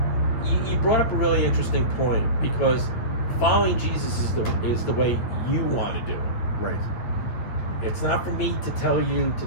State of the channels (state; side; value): late; right; 8.8 ms